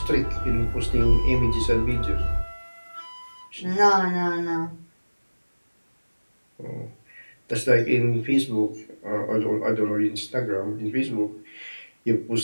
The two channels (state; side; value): inverted; both; correlation -1.00